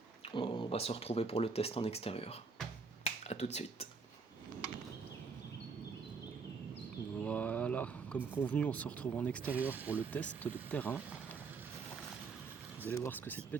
On va se retrouver pour le test en extérieur. A tout de suite. Voilà, comme convenu, on se retrouve en extérieur pour le test de terrain. Vous allez voir ce que cette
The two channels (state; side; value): quieter; left; 4.8 dB